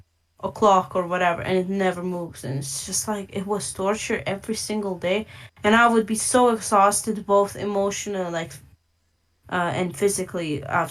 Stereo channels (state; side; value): identical; both; correlation 1.00